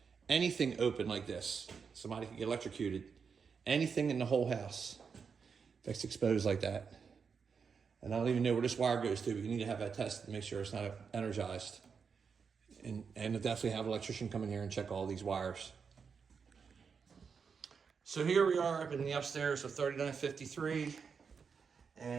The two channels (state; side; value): quieter; left; 5.9 dB